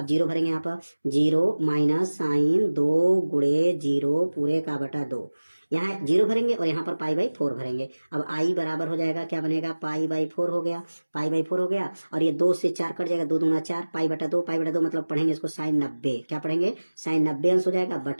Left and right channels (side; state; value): both; inverted; correlation -1.00